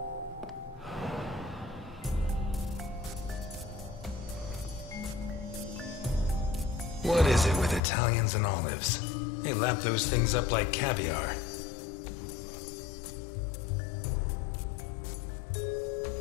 What is it with Italians and olives? They lap those things up like caviar.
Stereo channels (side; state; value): right; drops out; at 7.8 s